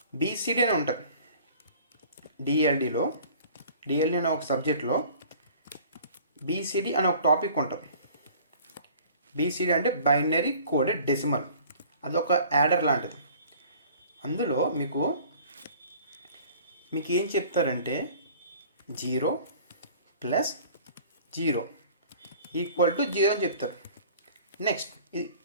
బీసీడీ అని ఉంటుంది. డిఎల్డి అనే ఒక సబ్జెక్ట్లో బీసీడీ అనే ఒక టాపిక్ ఉంటుంది. బీసీడీ అంటే బైనరీ కోడెడ్ డెసిమల్, అదొక యాడర్ లాంటిది. అందులో మీకు ఏం చెప్తారంటే 0 + 0 = 0 అని చెప్తారు. నెక్స్ట్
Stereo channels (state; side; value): inverted; both; correlation -0.49